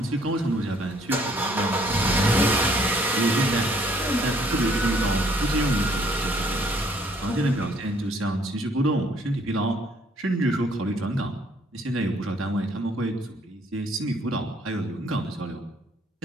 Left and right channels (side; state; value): both; normal; correlation 0.63